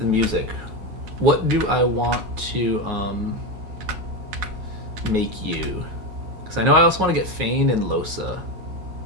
music, what do I want to make you? Because I know I also want to get Fane and Losa.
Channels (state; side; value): late; left; 9.5 ms